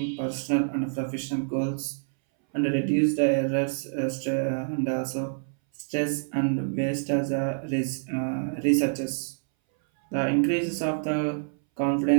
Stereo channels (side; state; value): left; silent; 60 dB below the other